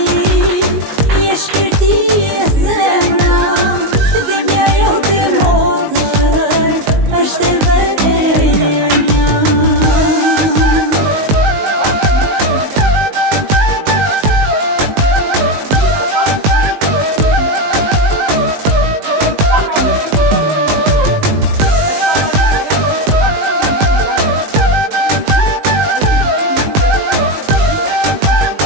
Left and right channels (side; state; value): left; late; 19 ms